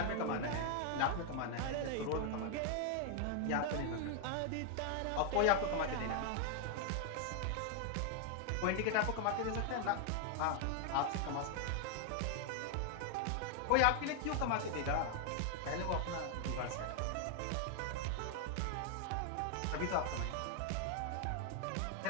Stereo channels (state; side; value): different; both; correlation 0.00